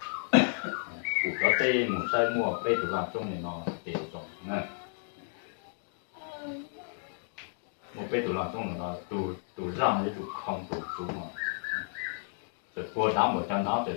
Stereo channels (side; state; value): right; silent; 56 dB below the other